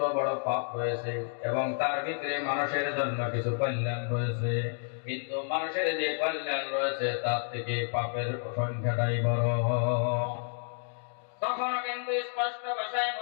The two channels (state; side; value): silent; right; 56 dB below the other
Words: বড় পাপ রয়েছে এবং তার ভিতরে মানুষের জন্য কিছু কল্যাণ রয়েছে, কিন্তু মানুষের যে কল্যাণ রয়েছে তার থেকে পাপের সংখ্যাটাই বড়। তখনও কিন্তু স্পষ্ট ভাষায়